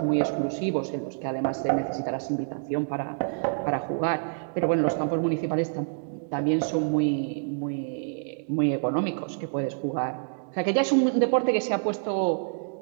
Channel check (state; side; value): silent; left; digital silence